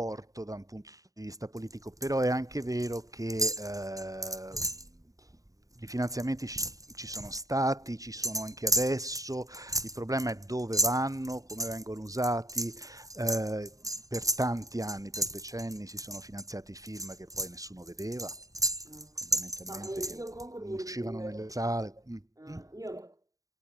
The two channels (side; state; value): left; late; 0.17 ms